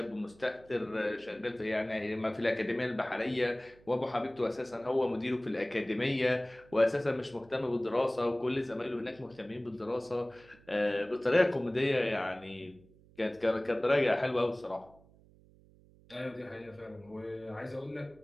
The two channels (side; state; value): right; noise; hum, 26 dB below the sound